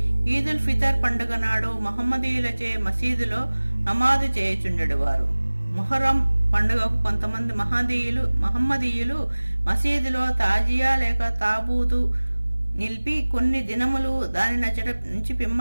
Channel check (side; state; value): both; inverted; correlation -1.00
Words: ఈదుల్ ఫితర్ పండుగ నాడు మహమ్మదీయులచే మసీదులో నమాజు చేయుచుండేవారు. మొహరం పండుగకు కొంతమంది మహమ్మదీయులు మసీదులో తాజియా లేక తాబూతు నిలిపి కొన్ని దినములు దాని నుంచి